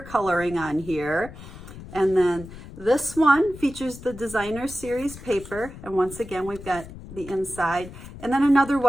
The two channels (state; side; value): noise; left; rumble, 15 dB below the sound